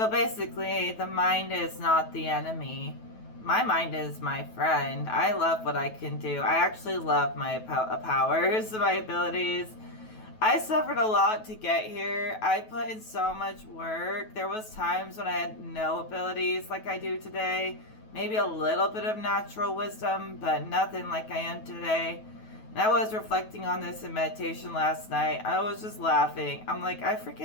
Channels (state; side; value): late; right; 9.2 ms